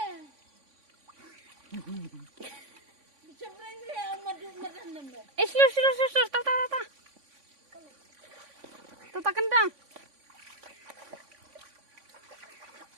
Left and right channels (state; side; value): late; left; 3.5 ms